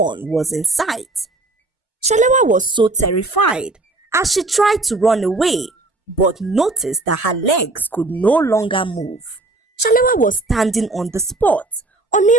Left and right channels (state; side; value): quieter; left; 3.1 dB